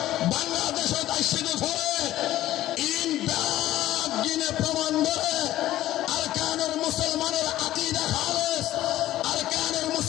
বাংলাদেশত আইছে পরে ইন বাগ গিনে প্রমাণ করে আরকানের মুসলমানের আকীদা খালেস আরকানের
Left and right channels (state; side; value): quieter; right; 14.4 dB